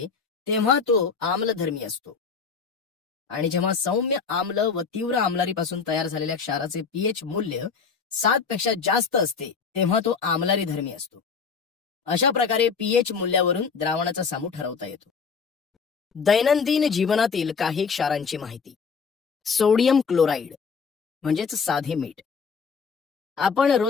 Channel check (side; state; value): right; quieter; 5.6 dB